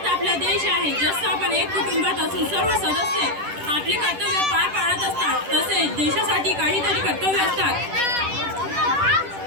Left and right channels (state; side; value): late; left; 10 ms